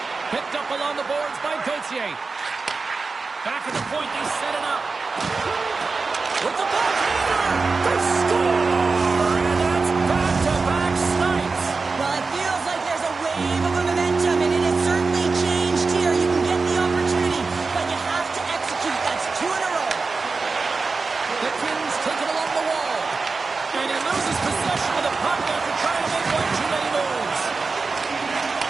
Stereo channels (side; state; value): left; quieter; 4.2 dB